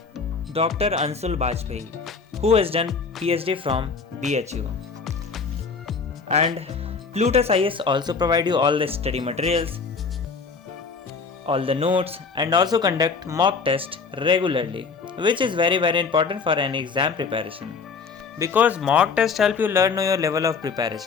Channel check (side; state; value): right; quieter; 5.0 dB